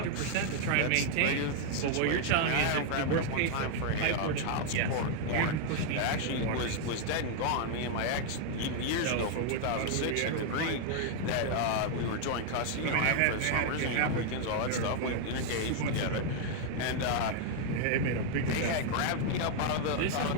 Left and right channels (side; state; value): both; different; correlation 0.00